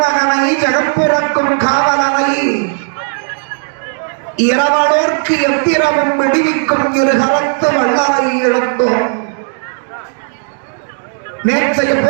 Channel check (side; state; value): left; silent; 63 dB below the other